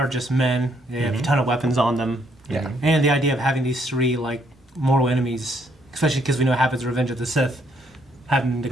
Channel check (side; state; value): both; normal; correlation 0.70